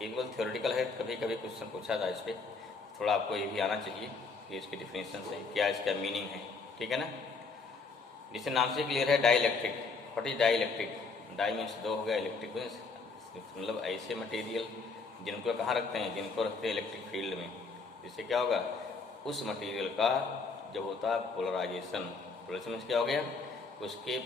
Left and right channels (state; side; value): quieter; right; 4.4 dB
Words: थ्योरेटिकल है, कभी कभी क्वेश्चन पूछा था इस पर, थोड़ा आपको ये भी आना चाहिए कि इसकी डिफिनेशन से क्या इसका मीनिंग है, ठीक है ना। जिससे नाम से क्लियर है, dielectric. What is dielectric? Die means दो हो गया, इलेक्ट्रिक मीन्स मतलब ऐसे मटेरियल जिनको कहाँ रखते हैं, जिनको रखते हैं इलेक्ट्रिक फील्ड में। जिससे क्या होगा, उस मटेरियल का जब होता है पोलराइजेशन। पोलराइजेशन मीन्स क्या हो गया, उसके